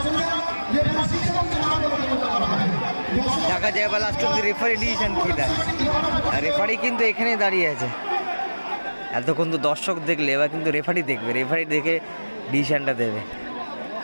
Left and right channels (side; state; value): both; inverted; correlation -1.00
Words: দেখা যায় বা লাস্ট অব্দি রেফারি ডিসিশন কি দেয়। রেফারি কিন্তু এখানে দাঁড়িয়ে আছে। এতক্ষণ তো দর্শক দেখলে, এবার কিন্তু রেফারি দেখবে, রেফারি দেখে ডিসিশনটা দেবে।